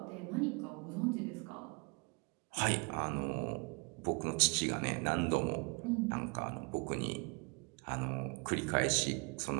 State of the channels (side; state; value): left; quieter; 32.4 dB